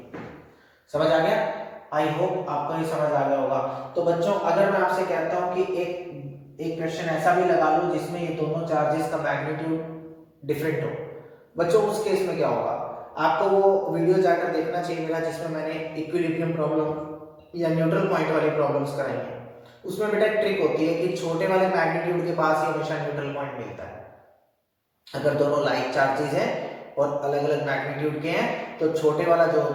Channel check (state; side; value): identical; both; correlation 1.00